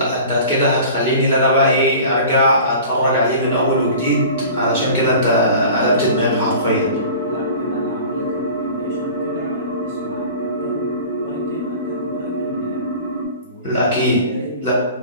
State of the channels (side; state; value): both; inverted; correlation -0.41